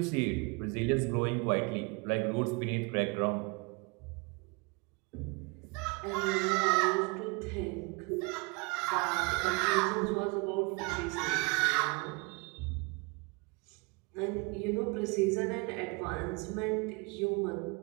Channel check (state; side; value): quieter; left; 28.8 dB